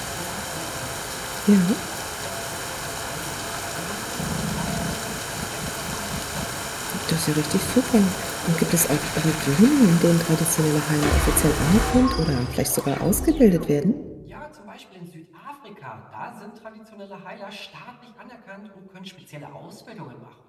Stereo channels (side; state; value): both; identical; correlation 1.00